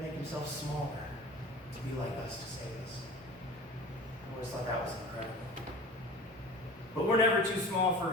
make Himself smaller to be like us to save us. I always thought that was incredible. But we're never too small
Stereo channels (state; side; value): normal; both; correlation 0.38